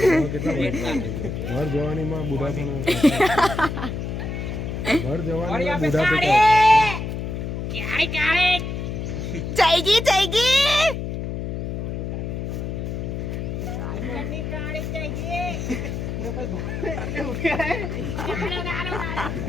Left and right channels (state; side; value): noise; left; hum, 4 dB below the sound